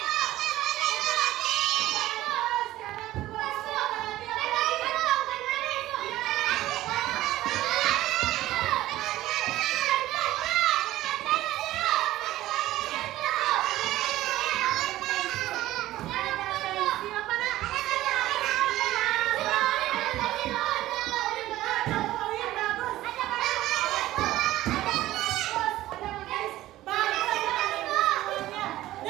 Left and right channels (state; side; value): quieter; left; 15.4 dB